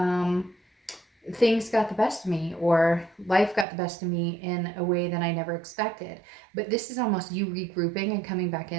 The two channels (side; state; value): left; drops out; at 3.7 s